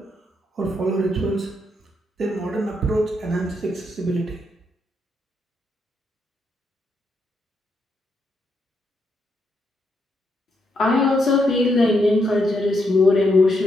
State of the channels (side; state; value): both; normal; correlation 0.79